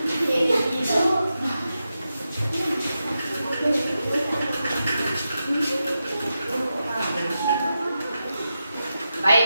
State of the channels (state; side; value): inverted; both; correlation -0.89